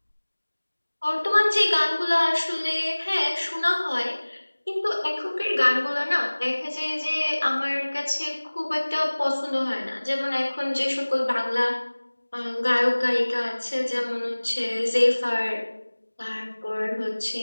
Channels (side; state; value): both; inverted; correlation -1.00